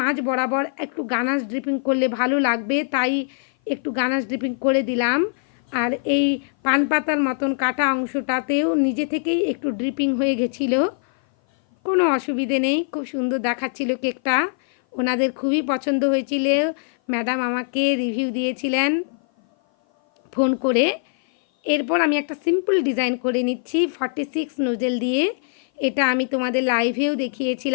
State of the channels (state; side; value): silent; right; 57 dB below the other